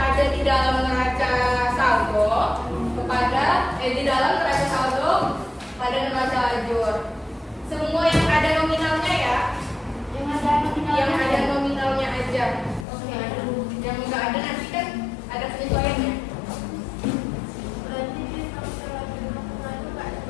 di dalam neraca saldo di dalam neraca saldo pada neraca lajur. Semua yang ada nominalnya ya. Yang ada nominalnya. Yang ada nominalnya aja. Oke. Yang nggak ada nanti kan ada penyesuaiannya. Berarti di neraca lajur nggak ada.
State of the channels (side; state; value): right; drops out; at 12.9 s